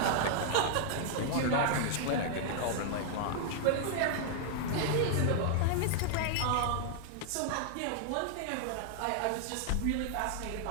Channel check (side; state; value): both; different; correlation 0.00